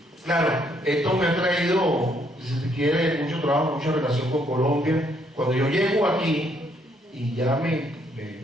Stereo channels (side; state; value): both; normal; correlation 0.70